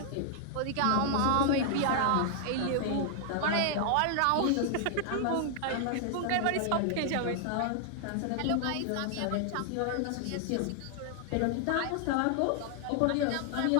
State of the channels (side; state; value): both; different; correlation 0.00